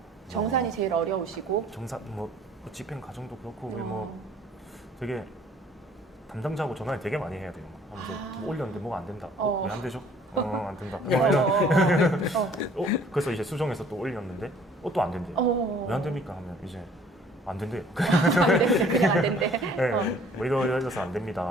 정산이 제일 어려우시고. 정산 뭐 집행 과정도 그렇고 우리 뭐 되게 담당자하고 전화를 되게 많이 해야 돼요. 하면서 뭐 올렸는데 뭐가 안 된다. 왜 안 되죠? 안 된다. 그래서 이제 수정해서 또 올렸는데 또 안 된대요. 왜 안 됩니까? 하면 이제 안 된대요. 안 된대, 그냥 안 된대. 네, 뭐 이러려서 안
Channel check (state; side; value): normal; both; correlation 0.56